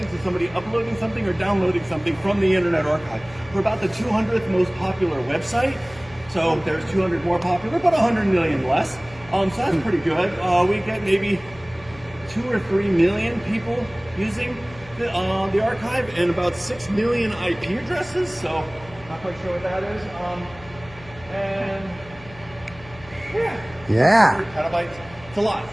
is somebody uploading something or downloading something from the Internet Archive. We're about the 200th most popular website. So there's 200 more popular, but 100 million less. So that's pretty good. We get maybe 2 or 3 million people using the archive and about 6 million IP addresses. So not quite sure what that is. And Yeah. 100 petabytes. It's a lot.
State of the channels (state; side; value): noise; left; hum, 20 dB below the sound